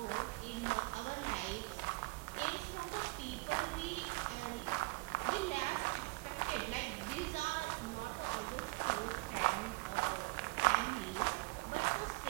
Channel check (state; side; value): quieter; left; 26.1 dB